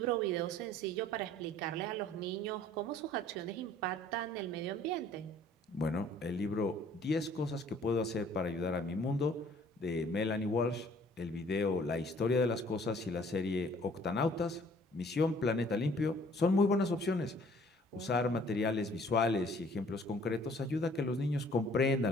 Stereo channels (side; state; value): both; normal; correlation 0.56